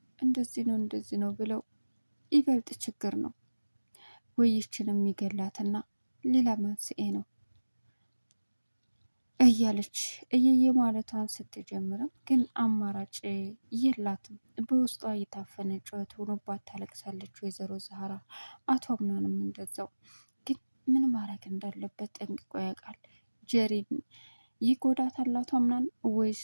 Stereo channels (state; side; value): inverted; both; correlation -1.00